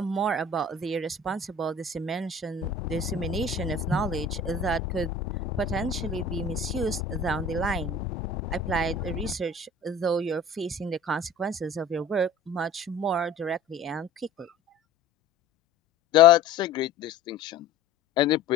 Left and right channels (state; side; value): quieter; right; 3.5 dB